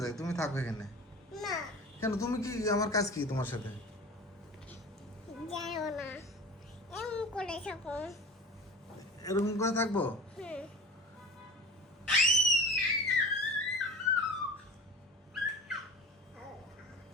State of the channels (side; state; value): both; normal; correlation 0.37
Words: যাই, তুমি থাকো এখানে। না কেন তুমি কি, আমার কাজ কি তোমার সাথে? যাও না এমন করে থাকো। এরকম করে থাকবো? হুম